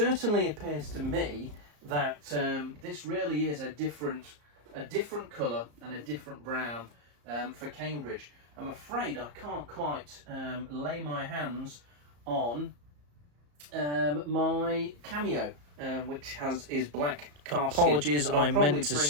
appears to me that this really is a different colour and a different brown for Cambridge. I'm afraid I can't quite lay my hands on my cameo, which is black calf skin. Apologies, I meant to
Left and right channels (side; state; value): left; late; 34 ms